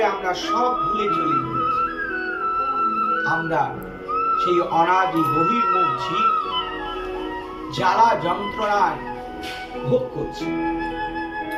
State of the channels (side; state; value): both; identical; correlation 1.00